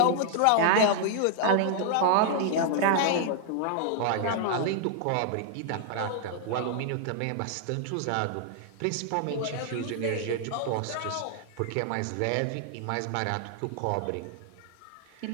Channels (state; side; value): different; both; correlation 0.00